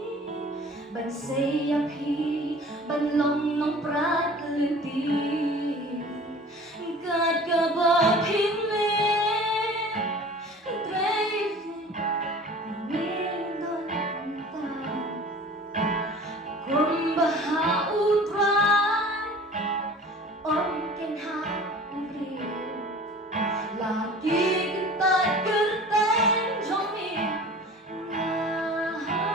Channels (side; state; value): both; normal; correlation 0.43